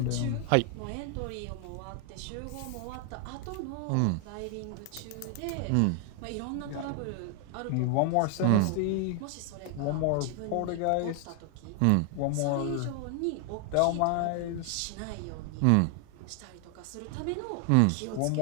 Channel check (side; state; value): both; different; correlation 0.00